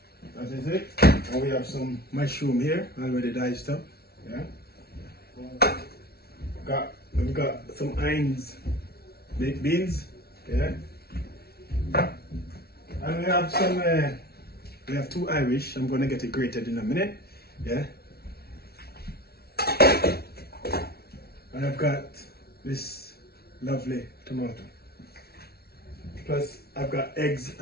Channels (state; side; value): late; right; 0.45 ms